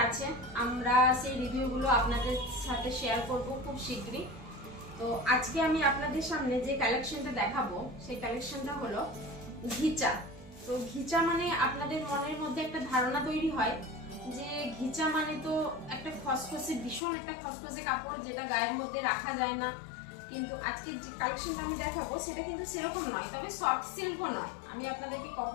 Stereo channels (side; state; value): right; drops out; at 17.0 s